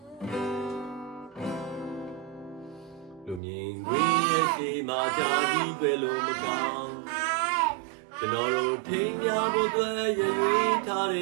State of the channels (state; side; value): drops out; left; at 3.4 s